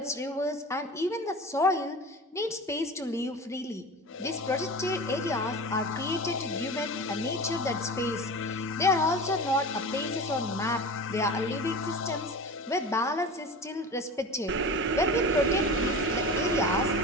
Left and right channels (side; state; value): both; normal; correlation 0.32